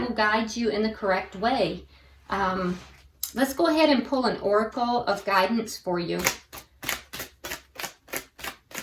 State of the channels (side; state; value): both; identical; correlation 1.00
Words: guide you in the correct way. Let's go ahead and pull an oracle of guidance for you.